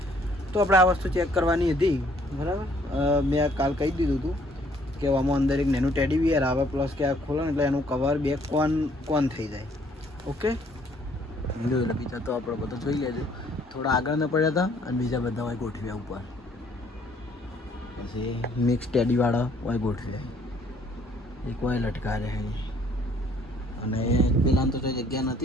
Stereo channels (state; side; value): normal; both; correlation 0.63